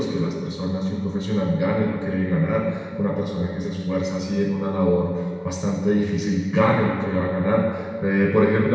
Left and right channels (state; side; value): identical; both; correlation 1.00